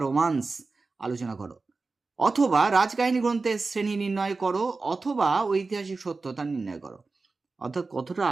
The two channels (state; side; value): quieter; left; 3.9 dB